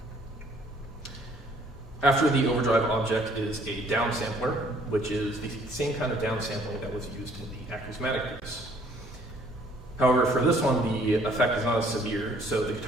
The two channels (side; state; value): both; normal; correlation 0.60